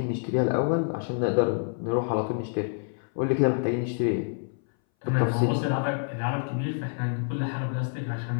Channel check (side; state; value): right; silent; 59 dB below the other